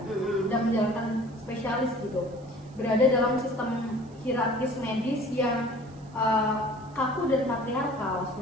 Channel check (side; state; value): right; noise; hiss, 29 dB below the sound